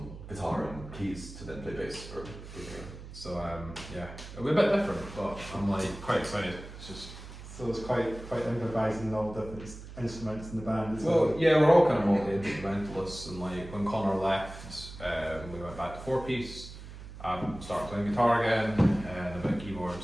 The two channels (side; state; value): right; noise; hum, 13 dB below the sound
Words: guitar and keys to then play bass. So yeah, it'll be a bit different, but I'm like quite excited. It's just. so it's quite improvising all different instruments in the band as well. Well, yeah, we're all kind of multi-instrumentalists, and like when Connor left, we went back to 4-piece. Started playing guitar again, and a bit of